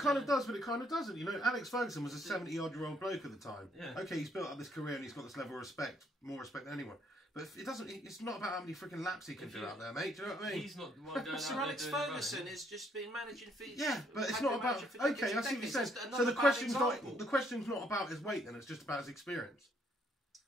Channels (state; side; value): normal; both; correlation 0.69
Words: of does, but it kind of doesn't. Alex Ferguson was a 70-odd-year-old bloke at the time. Yeah. Okay, he's built up this career and he's got this level of respect, more respect than anyone. But it doesn't. It's not about how many freaking laps he can do out there, mate. Do you know what I mean? He's not the one going Sir Alex Ferguson has just been managing for. Yeah, but it's not about. Okay, I see what you're saying. So the question's not about his weight, then it's just about his experience.